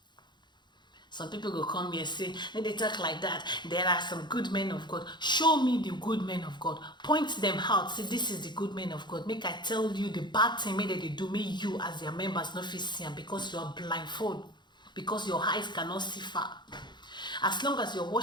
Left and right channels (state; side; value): late; right; 0.21 ms